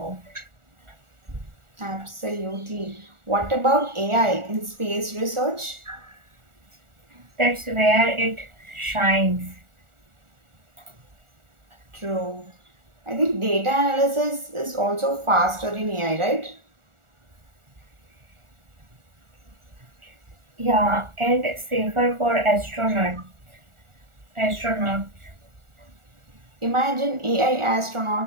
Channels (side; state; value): left; late; 1.4 ms